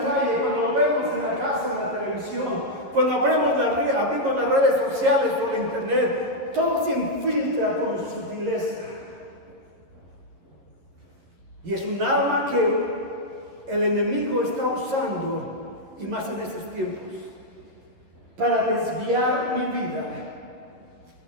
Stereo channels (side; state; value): left; late; 11 ms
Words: cuando lo vemos en la casa, en la televisión, cuando abrimos las redes sociales por la internet, todo se infiltra con sutileza. Y es un arma que el enemigo está usando, y más en estos tiempos, para desviar mi vida